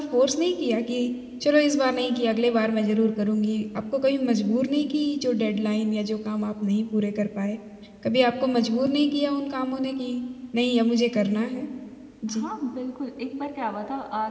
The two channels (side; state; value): both; identical; correlation 1.00